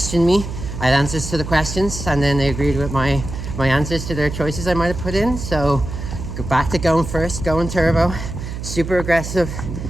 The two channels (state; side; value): noise; right; hum, 7 dB below the sound